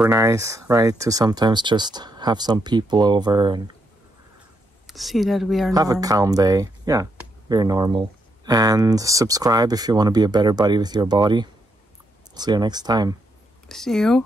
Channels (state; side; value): normal; both; correlation 0.79